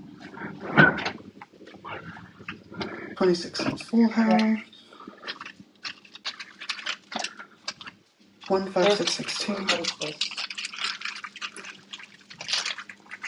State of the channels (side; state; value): both; identical; correlation 1.00